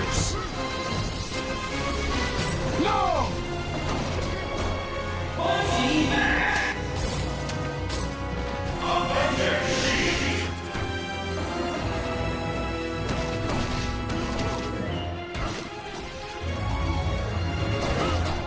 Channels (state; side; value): identical; both; correlation 1.00